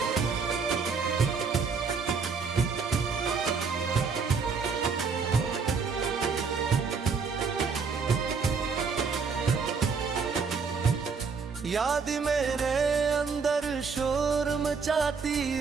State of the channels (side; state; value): left; quieter; 5.2 dB